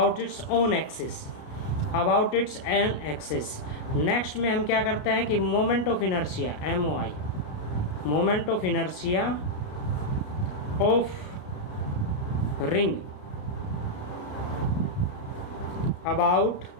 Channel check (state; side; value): late; right; 33 ms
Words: its own axis, about its an axis. Next में हम क्या करते हैं कि moment of inertia, MOI, moment of inertia of ring about